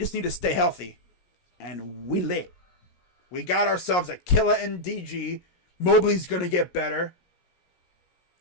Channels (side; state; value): right; late; 17 ms